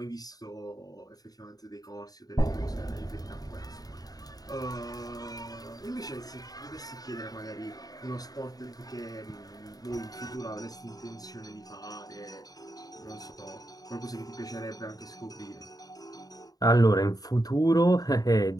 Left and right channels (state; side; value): late; right; 0.18 ms